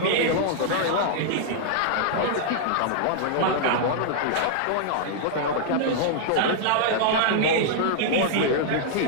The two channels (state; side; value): different; both; correlation -0.01